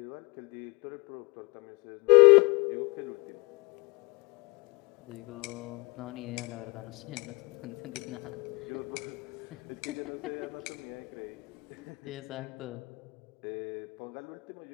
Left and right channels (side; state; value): right; quieter; 27.7 dB